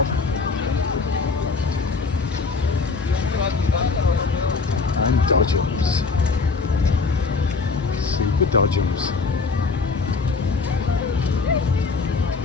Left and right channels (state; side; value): quieter; right; 4.4 dB